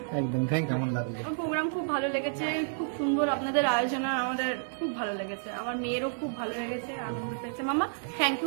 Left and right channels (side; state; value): left; silent; 58 dB below the other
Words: একদম। কেমন লাগলো? প্রোগ্রাম খুব ভালো লেগেছে, খুব সুন্দর আপনাদের আয়োজন, আমাদের খুব ভালো লেগেছে, আমার মেয়েরও খুব ভালো লেগেছে, আনন্দ পেয়েছে। মামা থ্যাংক